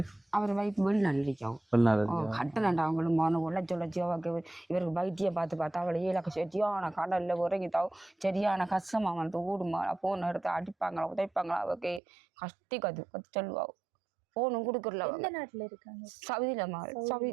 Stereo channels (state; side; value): drops out; left; at 12.0 s